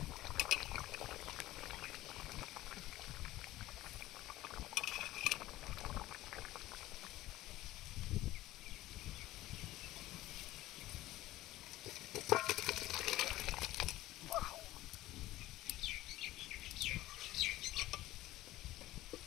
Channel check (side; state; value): right; quieter; 16.3 dB